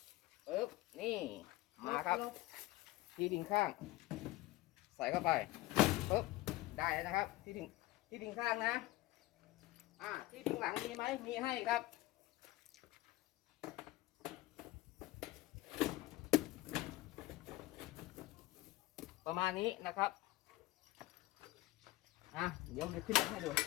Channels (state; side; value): quieter; right; 18.2 dB